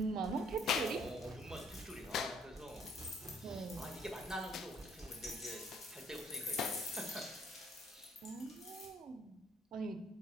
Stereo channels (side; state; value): both; normal; correlation 0.63